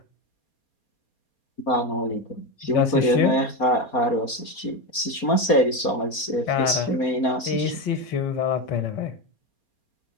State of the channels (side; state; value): right; late; 4.3 ms